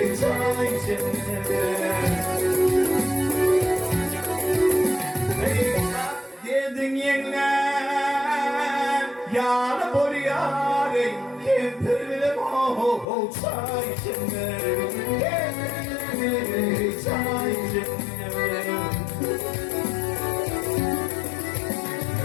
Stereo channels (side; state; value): right; drops out; at 13.1 s